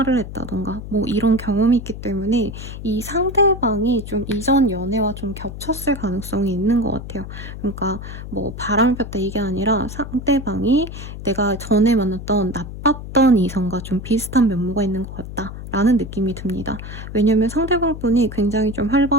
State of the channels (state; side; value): noise; left; hum, 10 dB below the sound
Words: 했다던가 뭐 이런 경험이 있기 때문에 이 상대방이 좀 이전 연애와 좀 겹쳤을 가능성이 있는 것 같아요. 그러니까 뭐 바람을 폈다 이게 아니라 상대방이 내가 전에 만났던 나빴던 이성과 좀 비슷한 면모가 있는 것 같다. 라는 느낌이 듭니다. 왜냐면 상대방분이 굉장히 좀